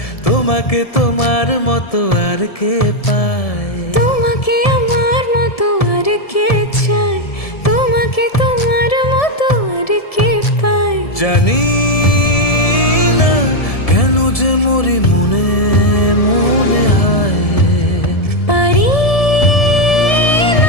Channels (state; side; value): late; right; 1.7 ms